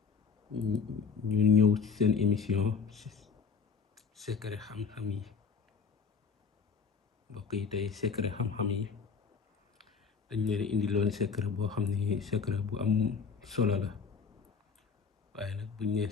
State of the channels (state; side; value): quieter; right; 5.6 dB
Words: ñu ñëw ci seen émission secret xam-xam yi. mbokk yi tey secret xam-xam yi dañ leen indiloon secret boo xam ne secret bu am solo la, waaye nag buñ nee